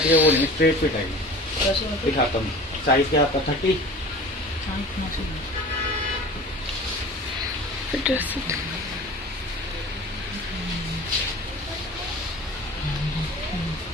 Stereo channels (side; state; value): both; normal; correlation 0.40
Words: है, वो स्ट्रेट फिट है। दिखाता हूँ साइज क्या आपका 30।